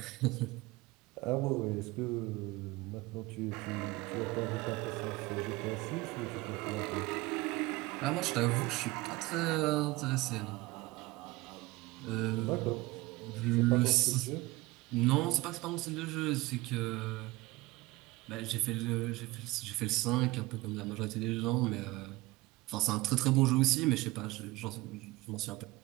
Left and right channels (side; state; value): left; quieter; 20.6 dB